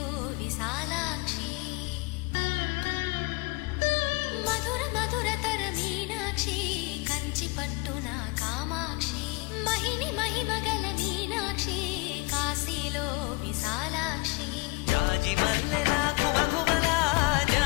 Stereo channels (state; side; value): quieter; right; 26.8 dB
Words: విశాలాక్షి మధుర మధురతర మీనాక్షి కంచి పట్టున కామాక్షి మహిని మహిమగల మీనాక్షి కాశీలో విశాలాక్షి జాజి మల్లెల ఘుమఘుమల